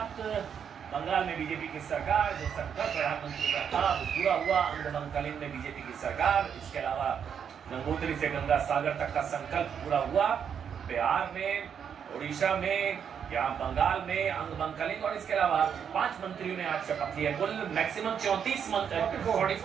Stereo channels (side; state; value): left; quieter; 7.7 dB